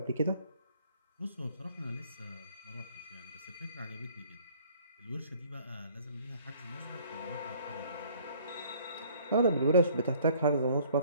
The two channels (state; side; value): inverted; both; correlation -0.57